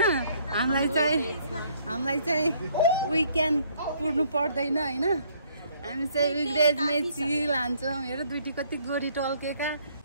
हामीलाई चाहिँ विकेन्ड कुर्नु पर्दैन होइन। हामी चाहिँ विकडेजमै चिल हान्छौँ। हेर दुईटी कति गोरी टल्केका।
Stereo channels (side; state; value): both; inverted; correlation -0.65